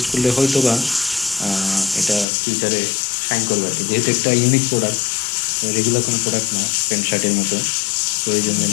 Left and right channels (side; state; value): right; drops out; at 2.2 s